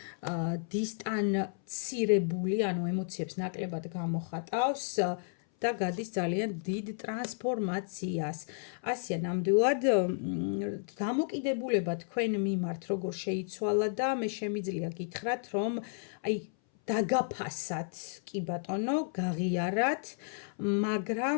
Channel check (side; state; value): right; silent; 56 dB below the other